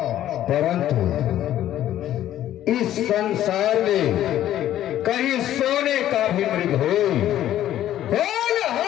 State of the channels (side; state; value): right; quieter; 12.4 dB